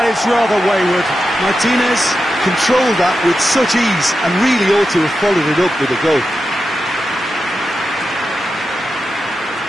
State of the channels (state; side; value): normal; both; correlation 0.90